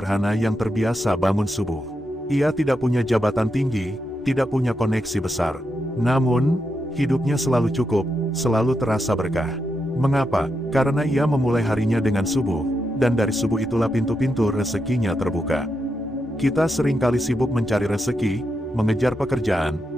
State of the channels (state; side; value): normal; both; correlation 0.84